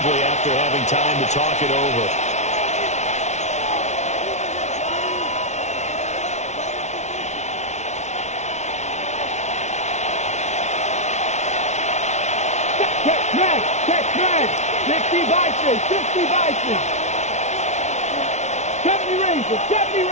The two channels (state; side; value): late; right; 0.33 ms